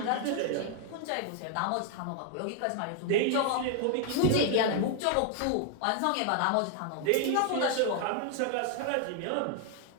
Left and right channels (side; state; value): both; different; correlation 0.00